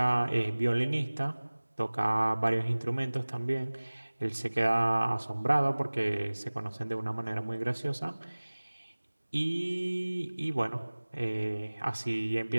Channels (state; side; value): inverted; both; correlation -1.00